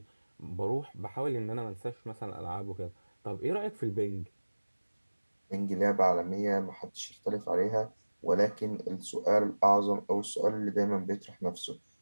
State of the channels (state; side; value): inverted; both; correlation -1.00